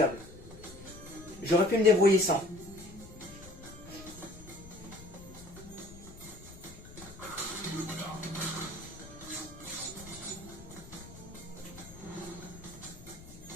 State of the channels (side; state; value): left; noise; rumble, 17 dB below the sound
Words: J'aurais pu me débrouiller sans.